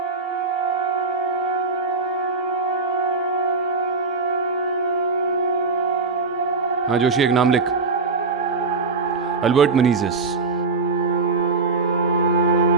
हाँ जोशी, एक नाम लिख, अल्बर्ट मेनेंजेस।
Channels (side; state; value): left; quieter; 4.4 dB